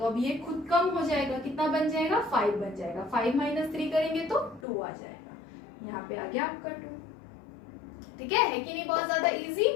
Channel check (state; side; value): drops out; right; at 4.7 s